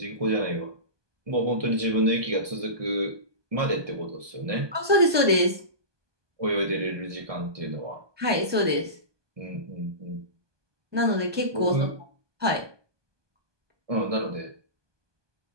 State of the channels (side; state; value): left; late; 1.2 ms